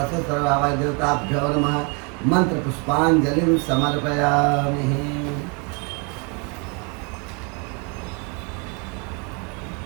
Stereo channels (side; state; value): left; quieter; 33.5 dB